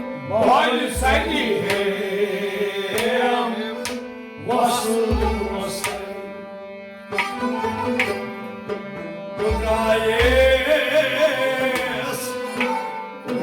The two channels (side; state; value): both; identical; correlation 1.00